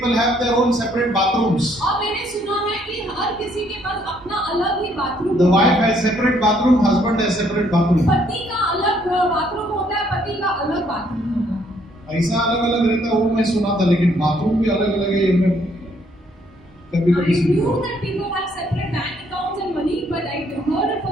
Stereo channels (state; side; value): normal; both; correlation 0.67